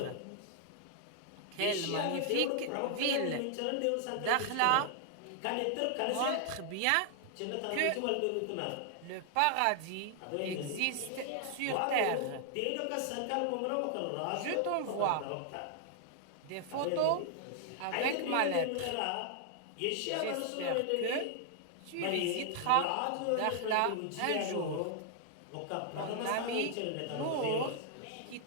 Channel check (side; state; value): both; different; correlation 0.00